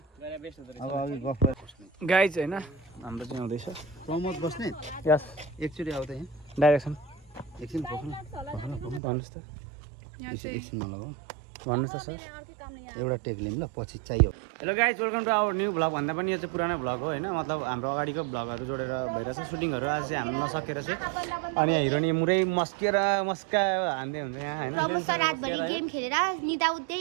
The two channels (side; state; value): left; drops out; at 9.0 s